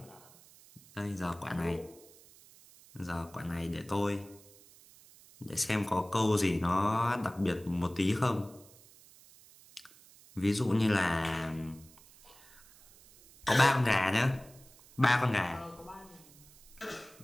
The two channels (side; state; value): right; noise; hiss, 24 dB below the sound